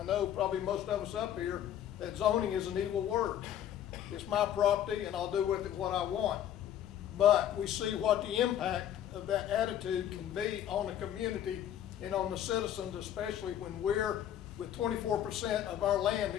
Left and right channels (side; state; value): right; quieter; 10.8 dB